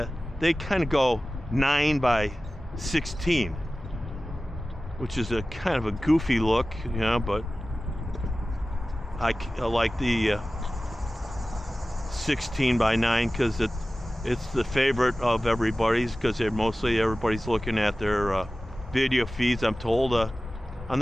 they kind of go 9 by 16, which is a kind of a goofy look, you know, but I like the 16 by 9 because it's the favorite of everybody's, because mostly everybody's looking at their video feeds, I'm told, on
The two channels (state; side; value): normal; both; correlation 0.96